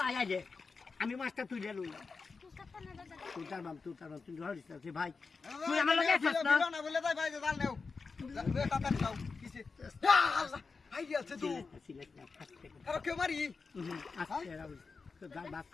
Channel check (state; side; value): quieter; right; 4.6 dB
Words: আগে আমি মাছটা তুলে লই তুই তার বাম তুই ধরিস না ভাই তুই আমার লগে আসছ না বলে তাই ভাই জাল নেও তাড়াতাড়ি যাও কিসে আই আছে তো আরে কে মারি আস্তে রাউল তো বাস